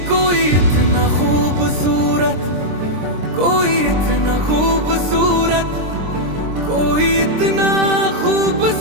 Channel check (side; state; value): left; late; 23 ms